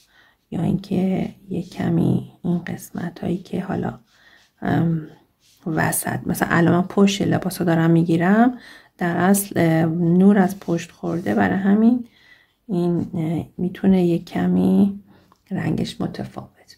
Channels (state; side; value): identical; both; correlation 1.00